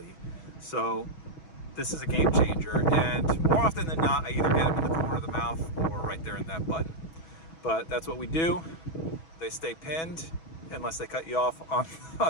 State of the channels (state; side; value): late; right; 6.2 ms